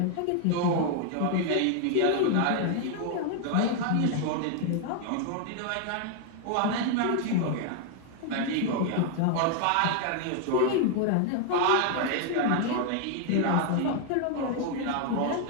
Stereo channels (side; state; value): both; different; correlation 0.00